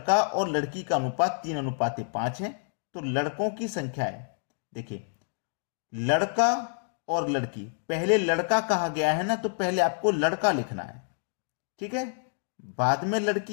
और लड़की का अनुपात 3:5 है। तो लड़कों की संख्या है, देखिए लड़का और लड़की, पहले लड़का कहा गया है ना, तो पहले आपको लड़का लिखना है, ठीक है। बाद में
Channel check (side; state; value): right; silent; digital silence